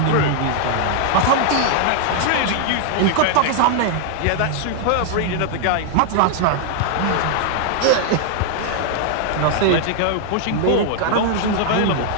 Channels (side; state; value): both; different; correlation -0.01